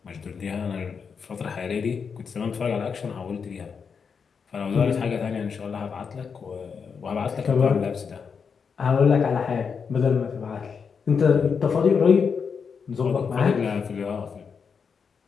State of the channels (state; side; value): quieter; right; 6.0 dB